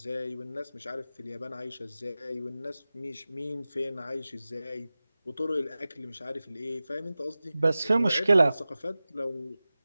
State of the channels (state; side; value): inverted; both; correlation -0.96